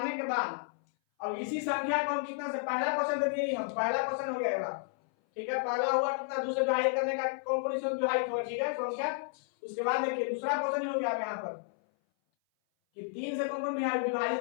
के बाद अब इसी संख्या को हम कितना से, पहला क्वेश्चन दे दिए हम, पहला क्वेश्चन हो गया ये बात। ठीक है, पहला हुआ कितना 2 से विभाजित करने का, कौन कौन इसमें विभाजित होगा। ठीक है, संख्या। उसके बाद देखिए दूसरा क्वेश्चन हो गया यहाँ पर कि 3 से कौन कौन विभाजित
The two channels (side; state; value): right; silent; 57 dB below the other